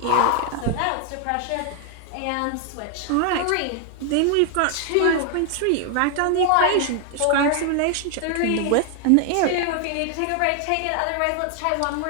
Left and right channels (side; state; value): both; different; correlation 0.00